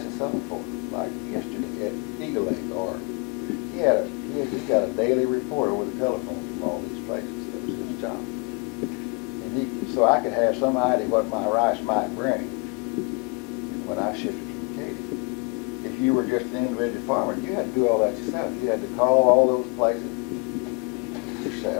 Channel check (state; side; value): quieter; right; 31.7 dB